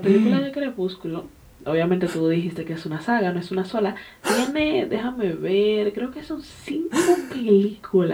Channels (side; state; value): both; identical; correlation 1.00